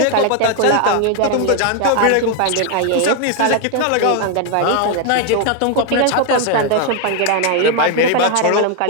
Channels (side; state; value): both; different; correlation 0.01